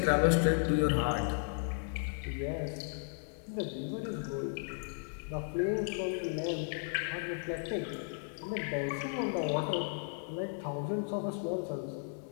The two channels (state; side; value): silent; right; 55 dB below the other